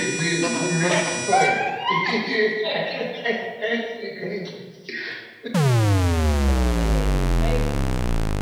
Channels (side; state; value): both; identical; correlation 1.00